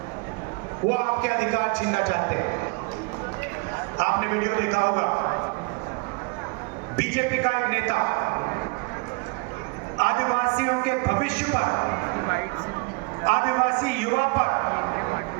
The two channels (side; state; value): left; quieter; 28.5 dB